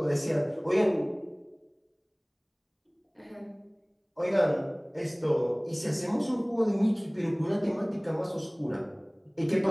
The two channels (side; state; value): both; identical; correlation 1.00